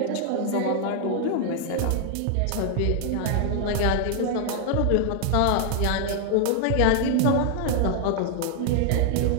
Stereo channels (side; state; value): both; different; correlation 0.00